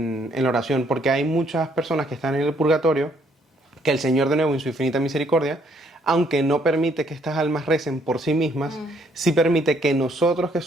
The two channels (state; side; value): normal; both; correlation 0.68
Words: la oración, porque hay muchas personas que están en el purgatorio, que el Señor de nuevo en su infinita misericordia, aunque no permite que estas almas recen por sí mismas, sí permite que nosotros que